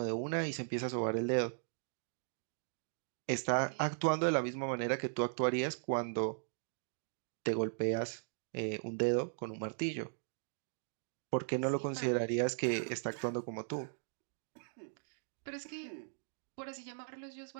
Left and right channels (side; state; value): left; silent; digital silence